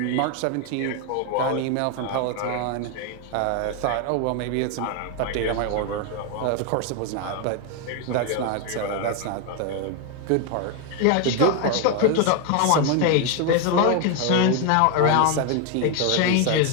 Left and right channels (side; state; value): both; different; correlation 0.01